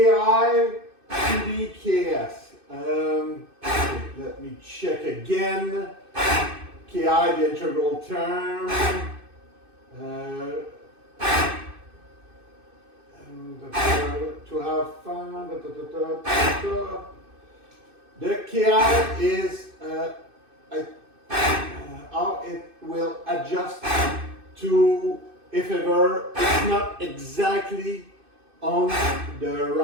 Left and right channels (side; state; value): left; late; 2.6 ms